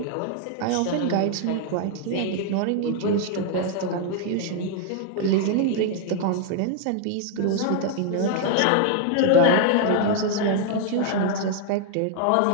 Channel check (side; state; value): both; different; correlation 0.00